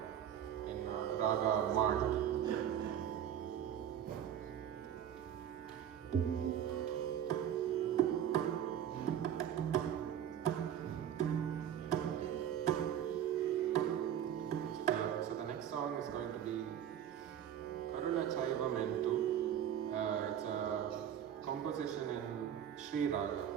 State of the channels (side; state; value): left; quieter; 9.9 dB